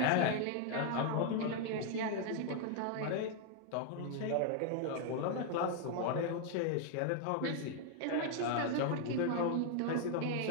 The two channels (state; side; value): different; both; correlation 0.00